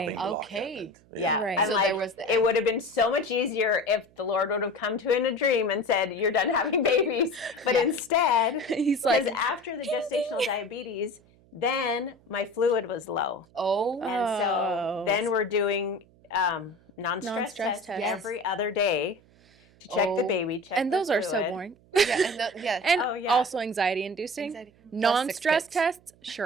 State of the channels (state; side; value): noise; right; hum, 29 dB below the sound